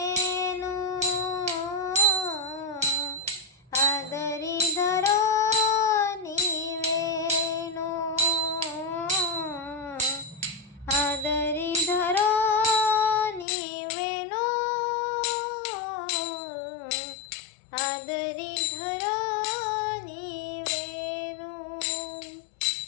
आदरी धरो नीवेनु आदरी धरो नीवेनु आदरी धरो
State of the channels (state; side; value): drops out; right; at 13.5 s